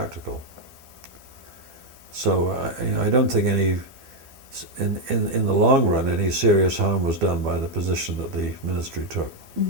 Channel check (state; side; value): late; left; 12 ms